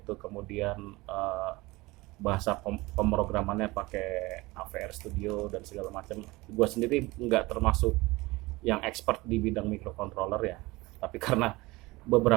kemudian bahasa pemrogramannya pakai AVR Studio dan segala macam. Gua sendiri nggak termasuk yang expert di bidang microcontroller ya, tapi karena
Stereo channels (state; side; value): quieter; left; 21.6 dB